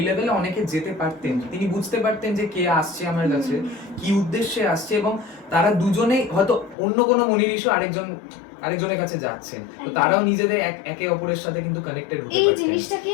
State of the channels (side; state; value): right; drops out; at 6.8 s